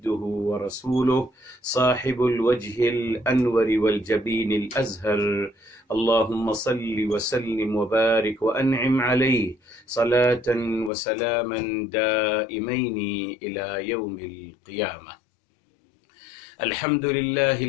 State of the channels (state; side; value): drops out; right; at 10.9 s